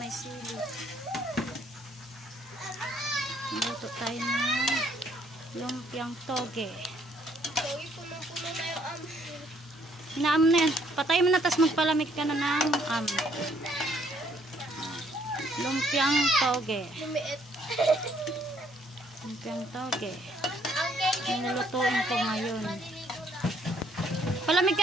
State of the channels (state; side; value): normal; both; correlation 0.66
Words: may sili. Luto tayo ng lumpiang toge. Toge, puno-puno na yung Inaam na yan. Patay mo na, tas magpalamig ka na ng lumpiang toge. lumiit. Lumpiang toge. Ang geng-geng Ang lulutuin ko ngayon. Palamig